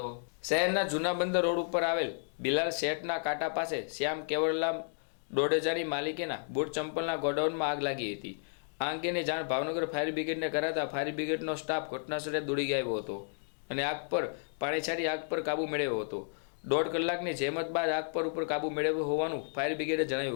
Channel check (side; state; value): right; silent; digital silence